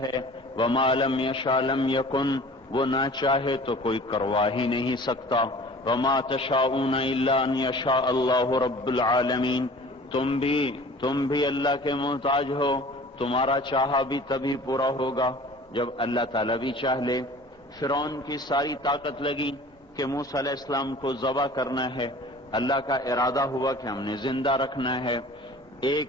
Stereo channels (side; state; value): both; normal; correlation 0.45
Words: ہے، وما لم یشاء لم یکن، وہ نہ چاہے تو کوئی کروا ہی نہیں سکتا، وما تشاءون الا ان یشاء اللہ رب العالمین، تم بھی اللہ کے محتاج ہو، تمہارا چاہا بھی تبھی پورا ہوگا جب اللہ تعالیٰ بھی چاہ لے۔ فرعون کی ساری طاقت لگی کہ موسیٰ علیہ السلام کو ذبح کرنا ہے، اللہ کا ارادہ ہوا کہ ہم نے زندہ رکھنا ہے۔